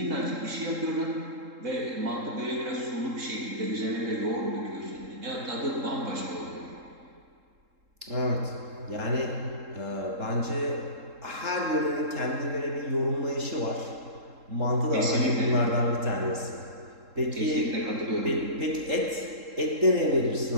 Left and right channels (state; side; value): late; left; 3.7 ms